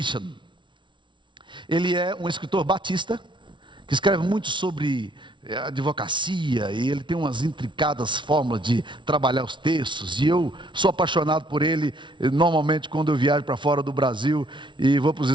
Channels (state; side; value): late; left; 0.24 ms